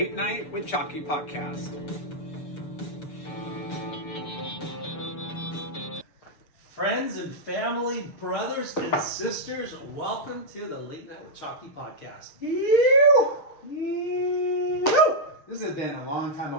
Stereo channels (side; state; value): right; late; 6.9 ms